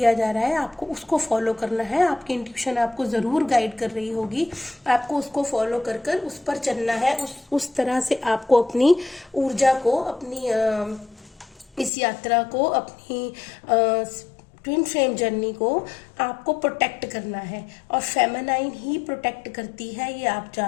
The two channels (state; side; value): drops out; right; at 11.9 s